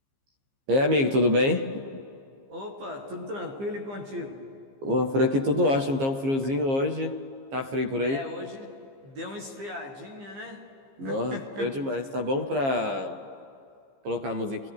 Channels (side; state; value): left; late; 15 ms